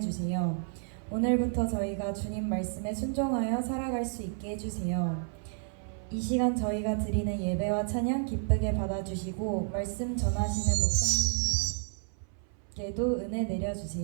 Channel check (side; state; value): left; silent; 57 dB below the other